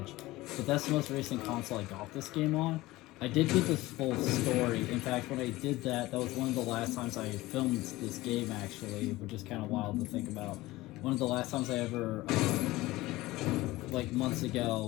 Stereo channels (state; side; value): quieter; right; 18.7 dB